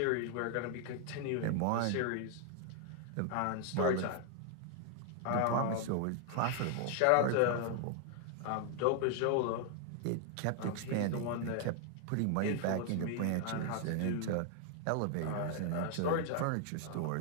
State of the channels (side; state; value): both; different; correlation 0.00